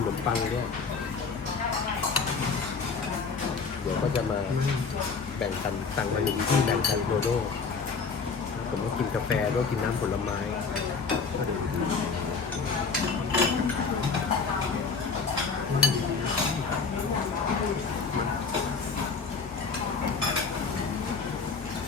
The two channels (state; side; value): quieter; right; 5.0 dB